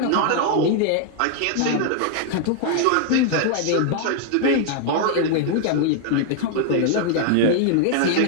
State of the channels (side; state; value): both; different; correlation 0.00